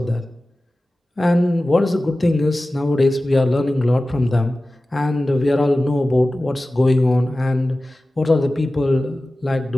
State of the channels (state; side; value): normal; both; correlation 0.96